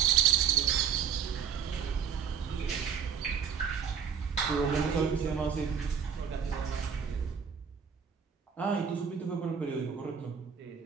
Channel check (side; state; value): left; quieter; 7.3 dB